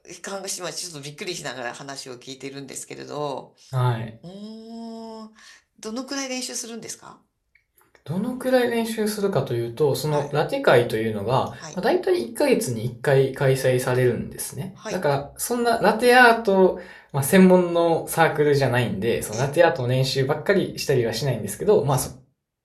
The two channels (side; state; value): both; identical; correlation 1.00